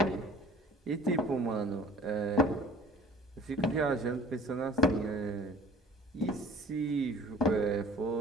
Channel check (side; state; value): both; normal; correlation 0.48